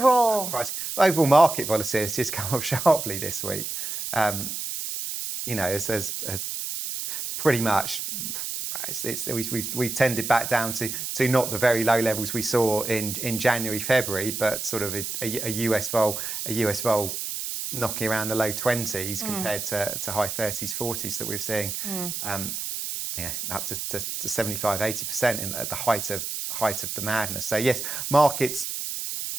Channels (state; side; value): noise; right; hiss, 4 dB below the sound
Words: market volatility has come up sharply this week. As pretty much we've tended back down to not the very low levels we saw in January, February, but sort of a US vol knocking around the low 20s compared to high 30s, 40s that we're seeing. Up to 75, 80% at the height of the madness. So yes, markets